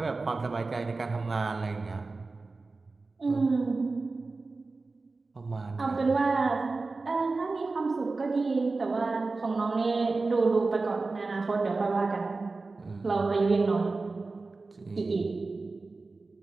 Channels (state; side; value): quieter; left; 3.7 dB